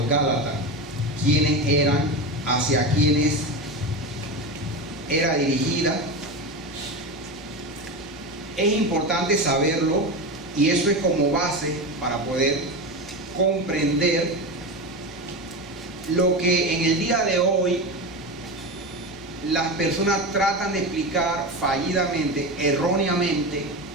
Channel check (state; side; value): noise; right; hum, 30 dB below the sound